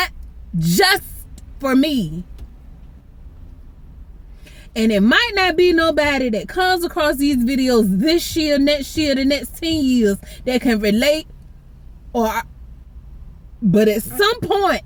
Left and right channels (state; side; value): identical; both; correlation 1.00